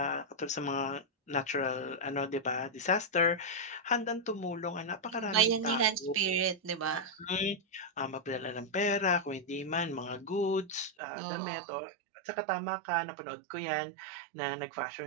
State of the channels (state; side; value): drops out; left; at 10.9 s